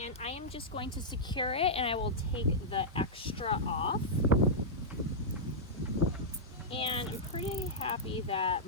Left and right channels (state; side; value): normal; both; correlation -0.10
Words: I am just going to secure it, and I will take the extra off. And I'm pretty happy that